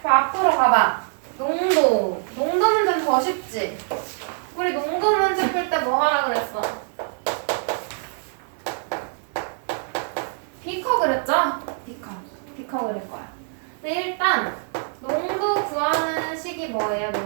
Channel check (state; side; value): silent; left; 63 dB below the other